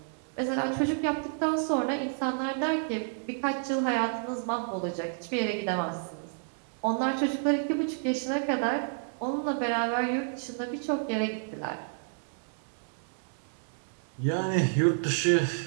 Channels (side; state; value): left; silent; digital silence